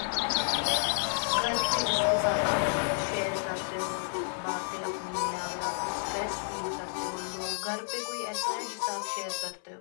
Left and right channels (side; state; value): right; silent; 57 dB below the other